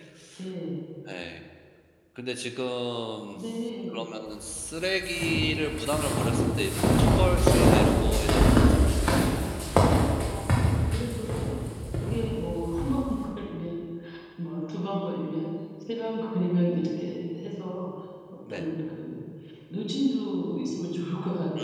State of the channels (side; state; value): both; identical; correlation 1.00